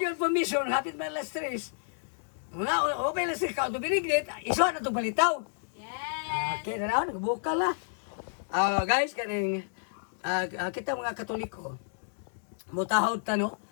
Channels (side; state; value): right; silent; digital silence